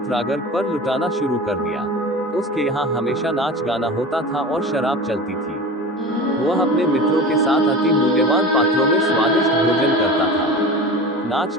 रागर पर लुटाना शुरू कर दिया। उसके यहाँ हमेशा नाच गाना होता था और शराब चलती थी। वह अपने मित्रों के साथ अति मूल्यवान पात्रों में स्वादिष्ट भोजन करता था। नाच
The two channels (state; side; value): normal; both; correlation 0.33